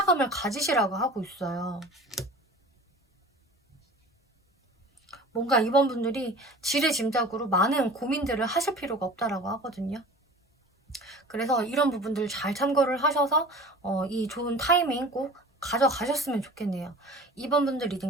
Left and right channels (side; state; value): both; normal; correlation 0.41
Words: 가지시라고 하고 있어요. 뭔가 이번 분들이 지레짐작으로 많은 고민들을 하실 필요가 없다라고 하거든요. 그래서 이런 부분들 잘 참고를 하셔서 이 좋은 타이밍 꼭 가져가셨으면 좋겠네요. 2번 분들 리딩